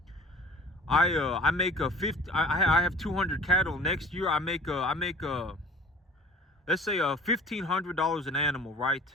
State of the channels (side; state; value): both; normal; correlation 0.44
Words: I make a 50. I have 200 cattle. Next year I make let's say $1,500 an animal, right?